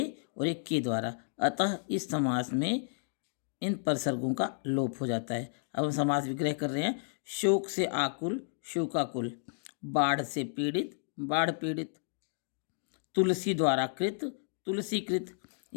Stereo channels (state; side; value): silent; right; digital silence